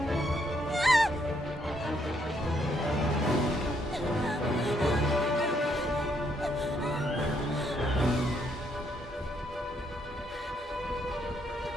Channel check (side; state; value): both; normal; correlation 0.73